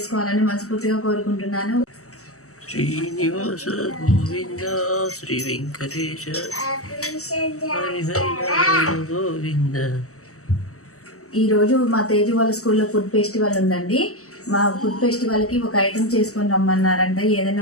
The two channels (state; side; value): late; right; 0.65 ms